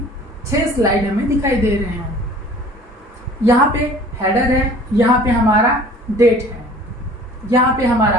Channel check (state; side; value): normal; both; correlation 0.48